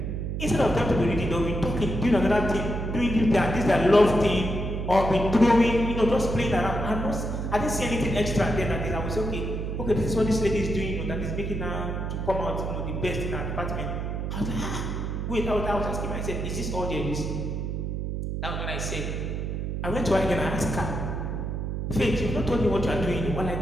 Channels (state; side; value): noise; right; hum, 3 dB below the sound